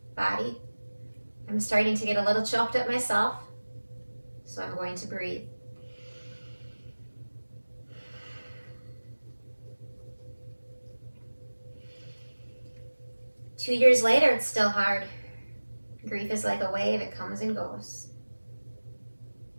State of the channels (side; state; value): both; inverted; correlation -1.00